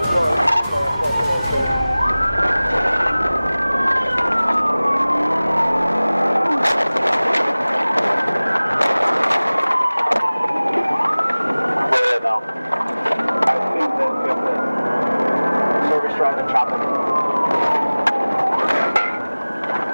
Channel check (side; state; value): both; inverted; correlation -0.99